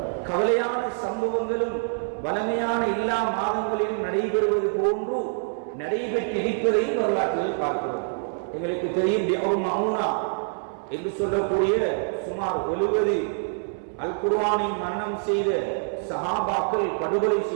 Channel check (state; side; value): silent; left; 61 dB below the other